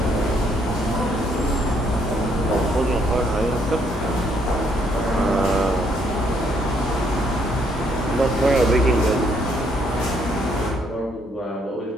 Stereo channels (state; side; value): normal; both; correlation 0.70